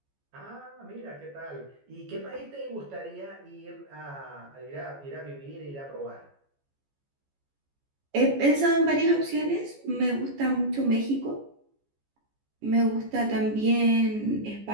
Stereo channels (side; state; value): left; late; 14 ms